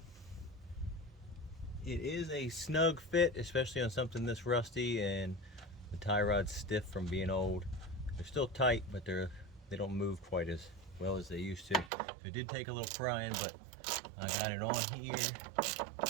It is a snug fit, especially on something this rusty, and the tie rod's stiff from being old. They're still tight, but they don't move quite as well as they used to. So it did take a little prying, but I got it on here,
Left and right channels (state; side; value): drops out; left; at 11.9 s